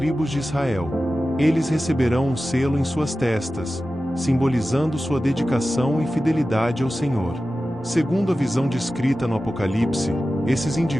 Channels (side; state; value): both; normal; correlation 0.94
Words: de Israel. Eles receberão um selo em suas testas, simbolizando sua dedicação e fidelidade ao Senhor. Segundo a visão descrita no Apocalipse, esses